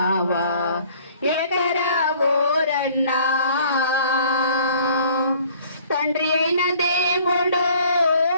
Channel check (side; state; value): both; inverted; correlation -0.55